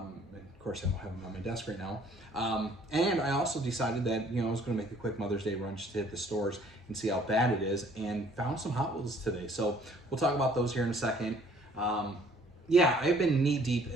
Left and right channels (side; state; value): both; normal; correlation 0.58